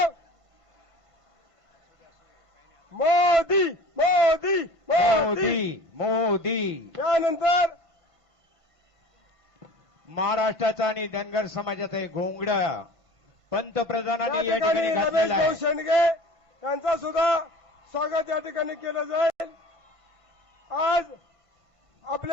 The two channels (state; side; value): late; left; 1.5 ms